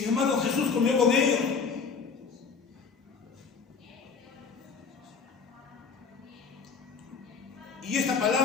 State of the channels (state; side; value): quieter; right; 5.3 dB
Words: embargo, Jesús comió con ellos. Y esta